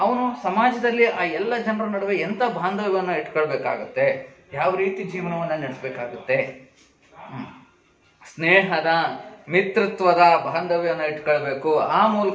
ಅವನು ಸಮಾಜದಲ್ಲಿ ಆ ಎಲ್ಲ ಜನರ ನಡುವೆ ಎಂತ ಬಾಂಧವ್ಯವನ್ನು ಇಟ್ಕೊಳ್ಬೇಕಾಗತ್ತೆ, ಯಾವ ರೀತಿ ಜೀವನವನ್ನ ನಡೆಸಬೇಕಾಗುತ್ತೆ? ಸ್ನೇಹದ, ಮಿತ್ರತ್ವದ ಬಾಂಧವ್ಯವನ್ನು ಇಟ್ಕೊಳ್ಬೇಕು. ಆ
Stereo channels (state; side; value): identical; both; correlation 1.00